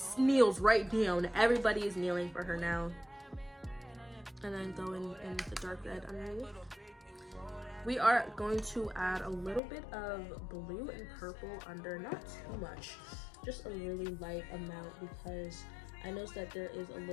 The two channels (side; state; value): right; drops out; at 9.6 s